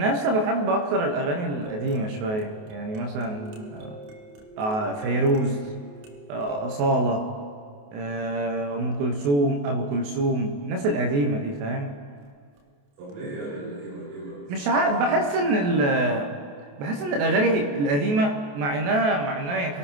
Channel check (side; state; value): left; late; 28 ms